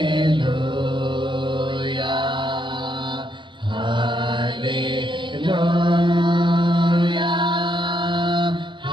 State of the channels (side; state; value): left; late; 0.23 ms